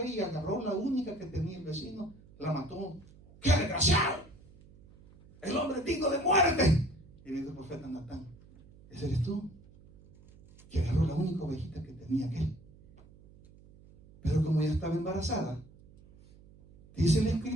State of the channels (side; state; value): right; noise; hum, 24 dB below the sound